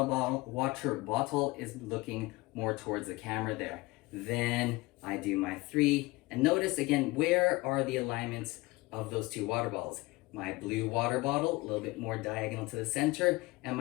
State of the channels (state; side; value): quieter; right; 21.8 dB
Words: bottle is looking more towards the camera there. Then I do my 3, and notice again, where are the alignments of those 2 water balls? My blue water bottle a little bit more diagonal to the center, and